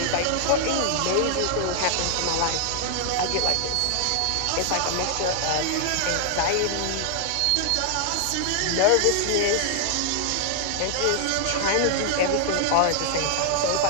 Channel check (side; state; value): both; different; correlation 0.00